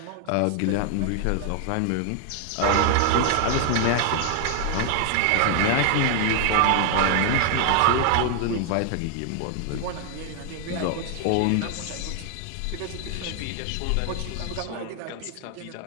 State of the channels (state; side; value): different; both; correlation 0.00